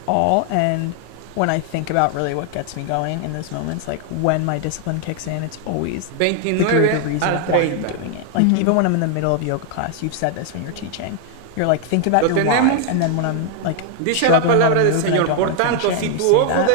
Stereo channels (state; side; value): different; both; correlation 0.00